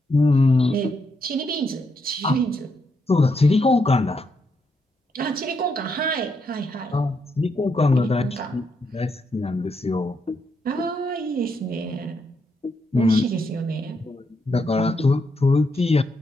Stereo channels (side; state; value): both; normal; correlation 0.79